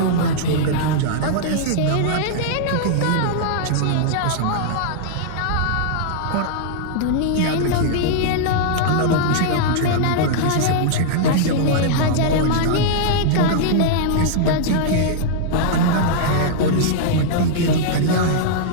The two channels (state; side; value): different; both; correlation -0.01